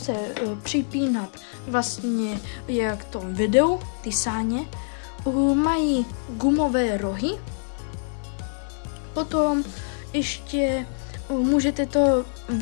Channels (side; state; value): right; silent; digital silence